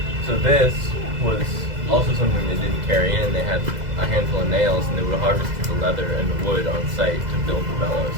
this was also something they didn't carry in. They had a handful of nails, and they would have harvested the leather and the wood on site to build the bellows.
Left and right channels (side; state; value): left; late; 2.0 ms